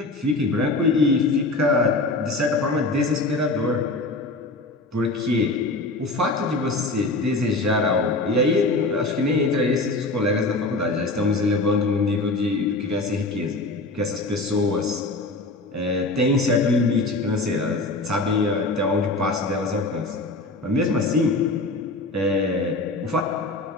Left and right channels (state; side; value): quieter; right; 3.0 dB